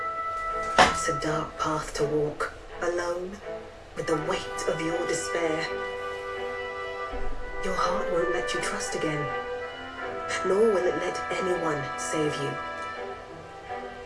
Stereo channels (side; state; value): both; identical; correlation 1.00